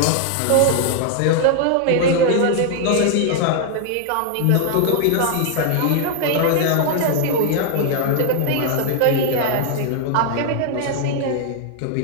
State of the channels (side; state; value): both; different; correlation 0.00